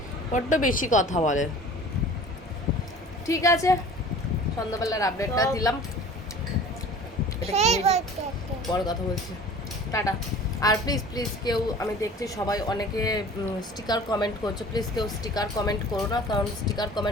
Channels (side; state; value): both; normal; correlation 0.44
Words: বড্ড বেশি কথা বলে। ঠিক আছে, সন্ধ্যাবেলার আপডেটটা দিলাম। এটা কি হয়েছে? পরে কথা বলছি, টাটা। আর প্লিজ প্লিজ কেউ, আমি দেখছি সবাই অনেকে স্টিকার কমেন্ট করছে, প্লিজ কেউ স্টিকার কমেন্ট করো না, কারণ স্টিকার